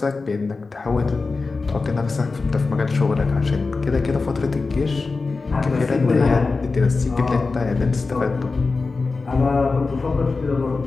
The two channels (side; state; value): right; quieter; 4.0 dB